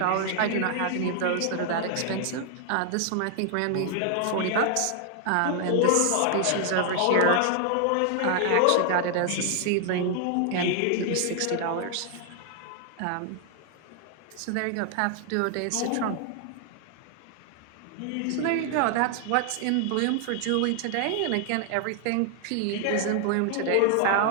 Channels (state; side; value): different; both; correlation 0.00